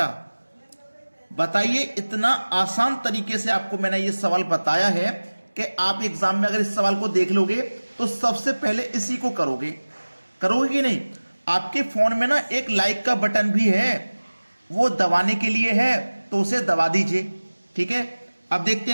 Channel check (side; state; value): both; inverted; correlation -1.00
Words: बताइए, इतना आसान तरीके से आपको मैंने ये सवाल बताया है कि आप एग्जाम में अगर इस सवाल को देख लोगे तो सबसे पहले इसी को करोगे कि नहीं? आपके फोन में ना एक लाइक का बटन भी है, वो दबाने के लिए है, तो उसे दबा दीजिए। ठीक है, अब देखते